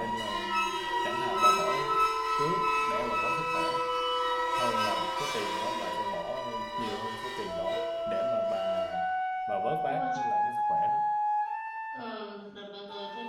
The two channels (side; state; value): both; identical; correlation 1.00